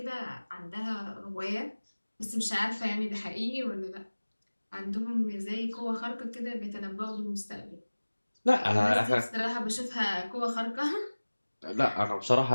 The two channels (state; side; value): inverted; both; correlation -1.00